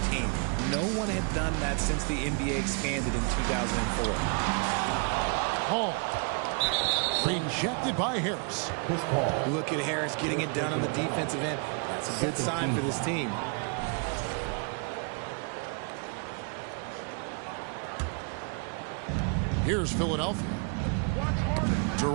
team. No one had done that since the NBA expanded in 2004. Hall. Rejected by Harris. Look at Harris getting it done on the defensive end. That's a good sign for this team. Here's Philadelphia.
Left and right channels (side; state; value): left; quieter; 37.7 dB